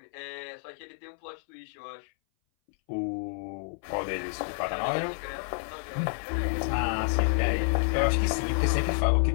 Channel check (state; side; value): silent; right; 58 dB below the other